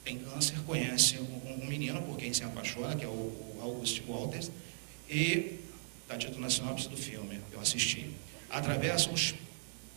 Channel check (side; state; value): left; silent; digital silence